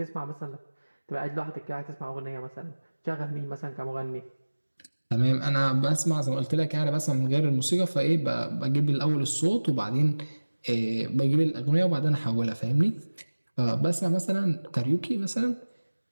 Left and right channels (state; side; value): inverted; both; correlation -1.00